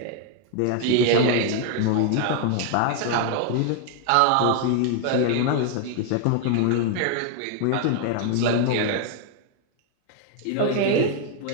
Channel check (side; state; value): both; different; correlation 0.00